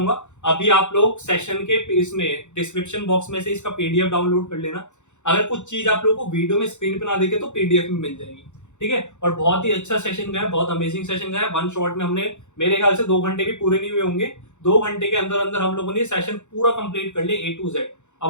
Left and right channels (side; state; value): right; late; 0.84 ms